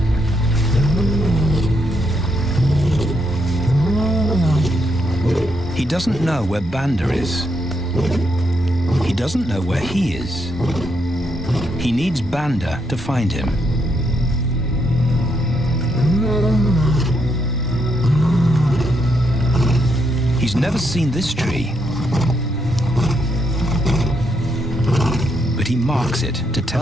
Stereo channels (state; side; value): normal; both; correlation 0.78